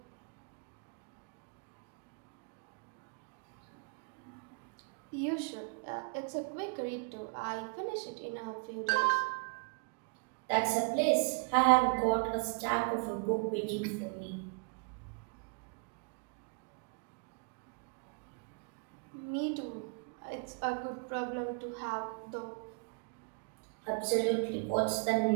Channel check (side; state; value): left; quieter; 36.7 dB